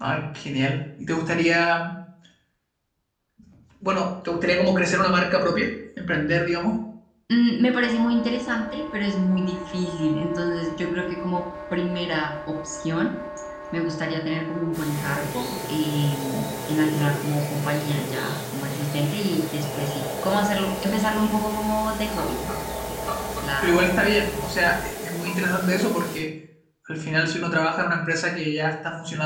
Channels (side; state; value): both; identical; correlation 1.00